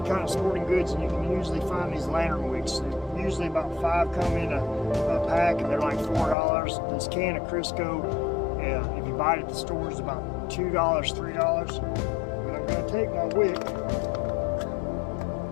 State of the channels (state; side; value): drops out; right; at 6.4 s